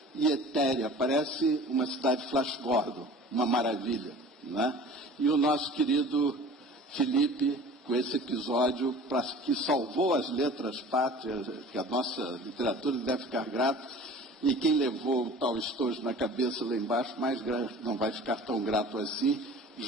e etérea, parece uma cidade Flash Gordon, uma maravilha, né? E o nosso querido Felipe, com esse episódio que salvou as letras pátrias, que a nossa literatura deve ficar grata, e quem levou o tal estojo na cabeça lá embaixo, não vai ficar tão grato assim,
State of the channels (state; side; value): normal; both; correlation 0.43